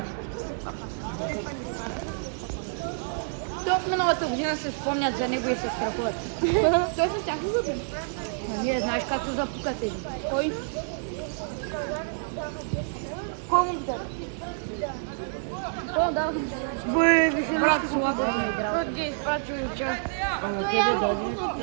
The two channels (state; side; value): silent; left; digital silence